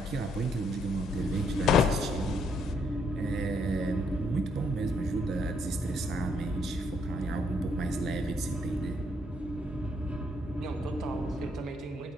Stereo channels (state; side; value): normal; both; correlation 0.72